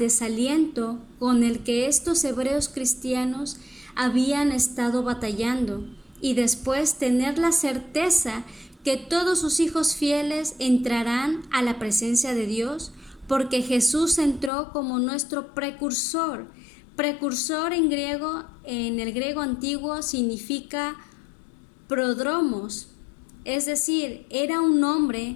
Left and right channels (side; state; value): right; drops out; at 14.5 s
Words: con el que estos hebreos cristianos habían estado batallando, y después tener la certeza que todos sus hijos fieles entrarán a la presencia de Dios, porque Jesús entró como nuestro precursor. Precursor en el griego antiguo significa prodromos, es decir, era un